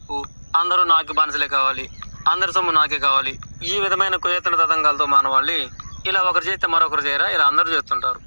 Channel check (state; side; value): inverted; both; correlation -1.00